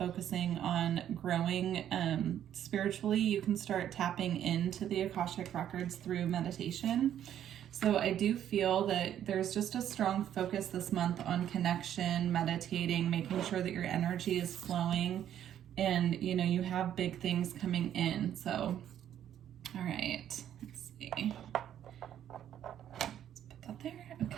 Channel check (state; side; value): quieter; left; 10.5 dB